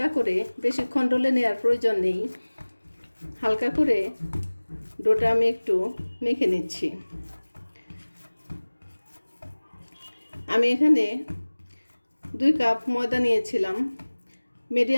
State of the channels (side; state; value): both; inverted; correlation -1.00